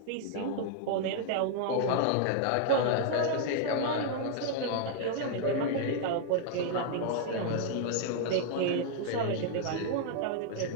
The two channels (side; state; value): both; different; correlation -0.01